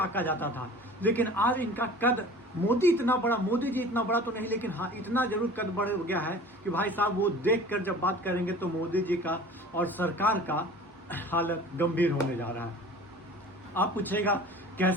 जाता था। लेकिन आज इनका कद, मोदी जी इतना बड़ा तो नहीं, लेकिन हाँ इतना जरूर कद बढ़ गया है कि भाई साहब वो देख कर जब बात करेंगे तो मोदी जी का और सरकार का हालत गंभीर होने जा रहा है। आप पूछेगा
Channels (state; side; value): normal; both; correlation 0.43